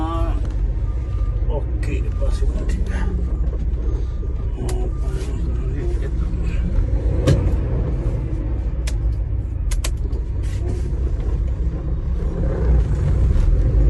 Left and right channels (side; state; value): both; identical; correlation 1.00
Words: ओके बस ठीक है।